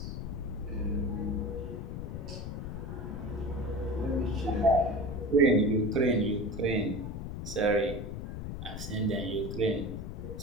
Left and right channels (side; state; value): left; noise; rumble, 6 dB below the sound